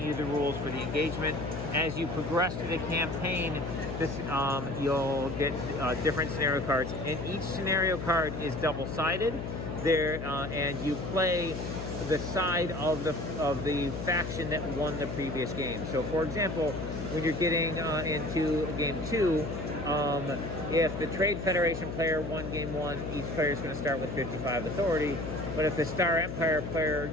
you the rules for the engagement. As you progress through the campaign, you'll get different scenario cards, and each scenario card is double-sided. And you play the side of the faction that won the previous game. So, for example, when you're getting into Game 2, if the Trade Federation player won Game 1, each player is going to start with 55 authority. But if the Star Empire player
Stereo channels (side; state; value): left; noise; hum, 6 dB below the sound